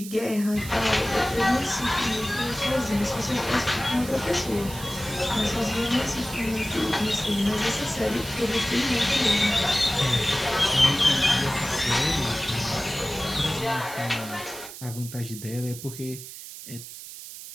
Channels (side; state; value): right; noise; hiss, 13 dB below the sound